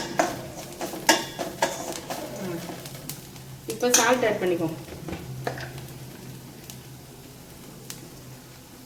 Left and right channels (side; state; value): both; identical; correlation 1.00